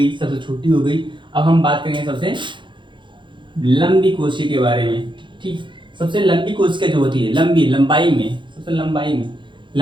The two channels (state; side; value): late; left; 0.23 ms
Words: सबसे छोटी हो गई, अब हम बात करेंगे सबसे लंबी कोशिका के बारे में। ठीक, सबसे लंबी कोशिका जो होती है, लंबाई में सबसे